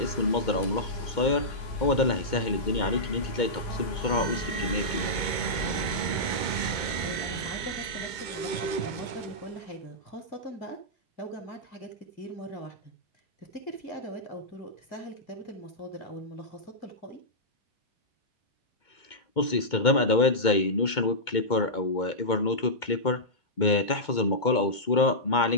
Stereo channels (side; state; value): right; late; 2.2 ms